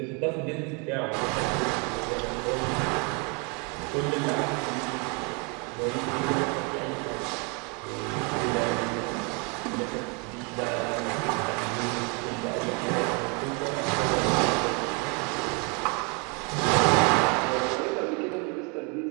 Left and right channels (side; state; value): left; quieter; 33.2 dB